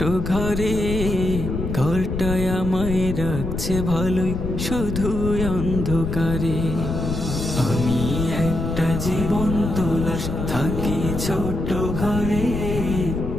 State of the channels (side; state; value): left; noise; rumble, 3 dB below the sound